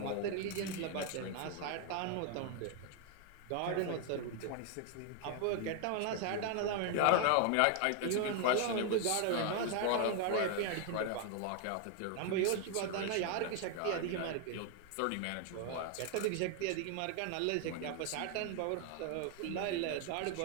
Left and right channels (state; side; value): different; both; correlation 0.00